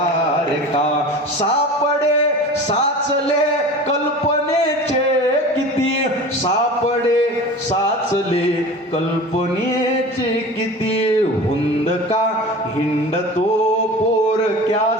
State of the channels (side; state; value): both; normal; correlation 0.36